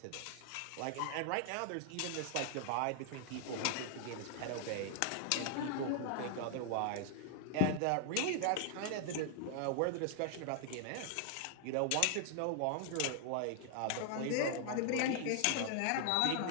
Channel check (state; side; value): different; both; correlation 0.00